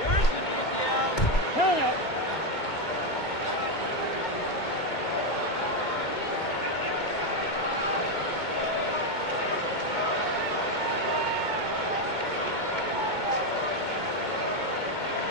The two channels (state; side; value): late; right; 2.2 ms